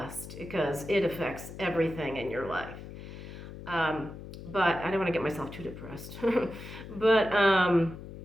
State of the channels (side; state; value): left; noise; hum, 12 dB below the sound